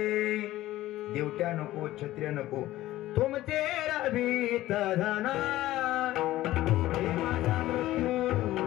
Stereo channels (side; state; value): right; quieter; 15.7 dB